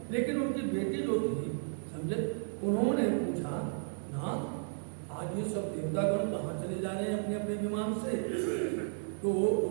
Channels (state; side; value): silent; left; digital silence